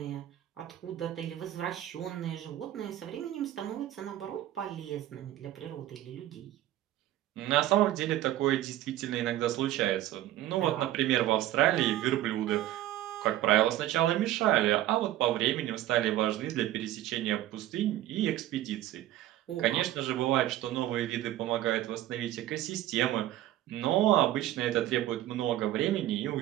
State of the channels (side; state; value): left; quieter; 13.7 dB